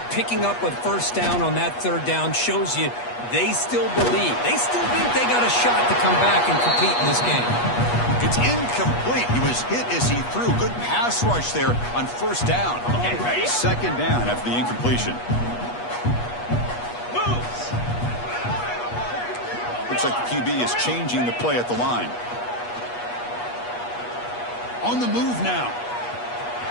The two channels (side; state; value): right; late; 8.3 ms